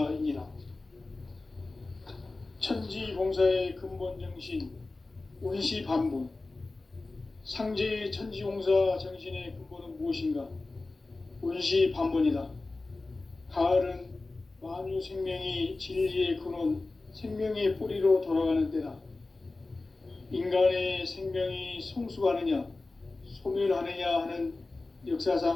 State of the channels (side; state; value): right; quieter; 3.3 dB